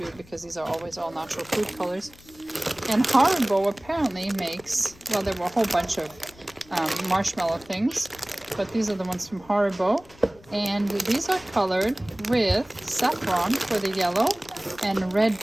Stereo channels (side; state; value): left; noise; rumble, 24 dB below the sound